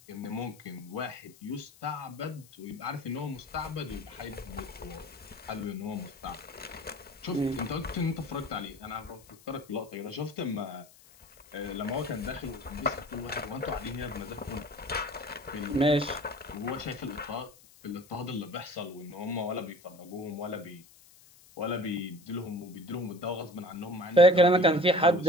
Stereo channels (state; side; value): noise; left; hiss, 24 dB below the sound